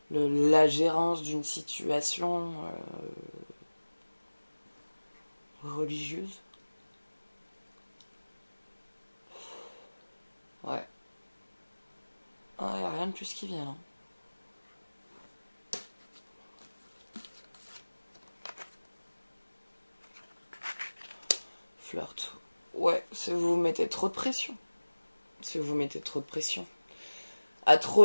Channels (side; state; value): both; inverted; correlation -1.00